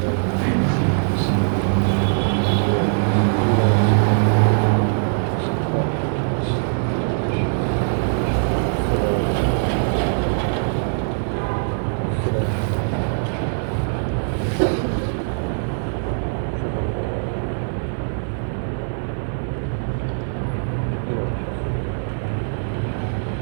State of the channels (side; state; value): left; silent; 59 dB below the other